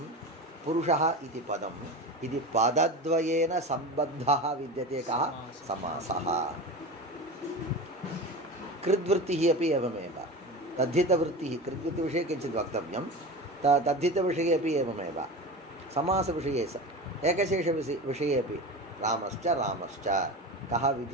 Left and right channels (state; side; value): normal; both; correlation 0.28